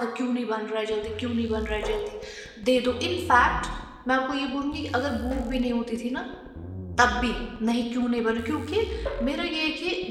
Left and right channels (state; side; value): identical; both; correlation 1.00